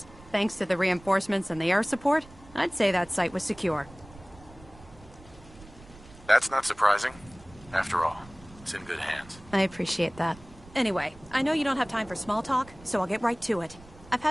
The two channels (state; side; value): noise; right; rumble, 21 dB below the sound